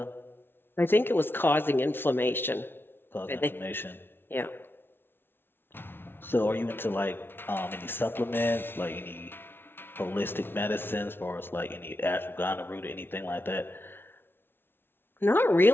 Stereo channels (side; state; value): right; late; 0.11 ms